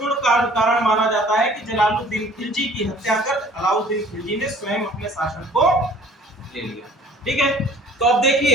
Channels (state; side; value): normal; both; correlation 0.52